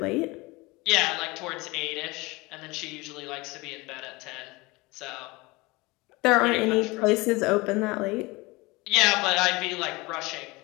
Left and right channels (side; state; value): right; quieter; 23.3 dB